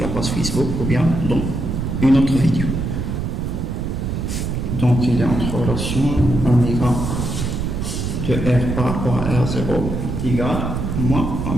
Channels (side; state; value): right; noise; rumble, 2 dB below the sound